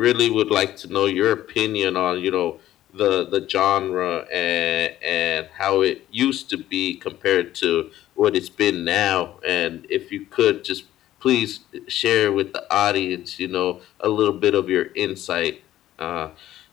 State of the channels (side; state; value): right; quieter; 13.5 dB